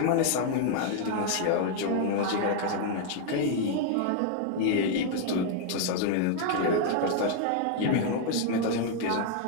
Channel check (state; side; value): different; both; correlation 0.00